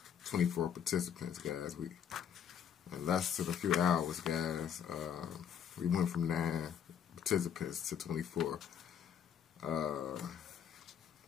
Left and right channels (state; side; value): quieter; right; 8.4 dB